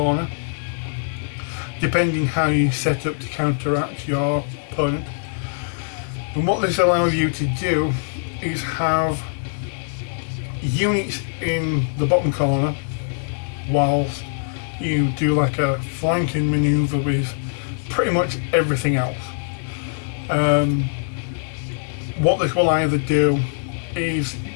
depending how you set up to counteract your opponent. And what this allows you to do is have units in the bottom corner whilst you do like a flanking manoeuvre with pretty much everything else. What this will either do is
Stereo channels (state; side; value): silent; right; 64 dB below the other